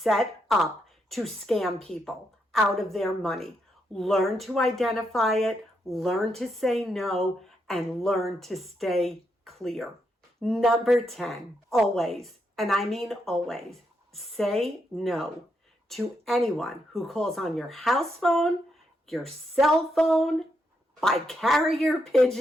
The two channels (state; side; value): normal; both; correlation 0.80